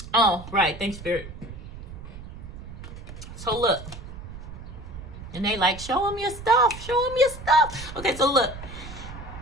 Oh, right. Thanks, Spirit. So look. And they like, show them your stuff. Show them your stuff. Okay, so look.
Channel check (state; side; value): noise; right; rumble, 12 dB below the sound